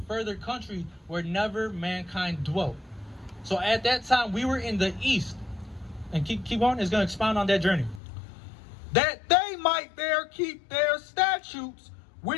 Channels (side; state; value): right; drops out; at 8.0 s